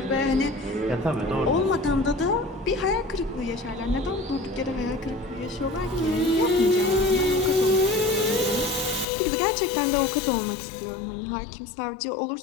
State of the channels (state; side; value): drops out; right; at 9.1 s